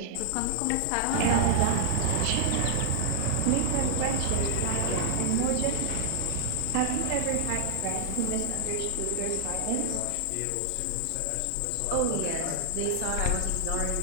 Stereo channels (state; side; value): different; both; correlation 0.00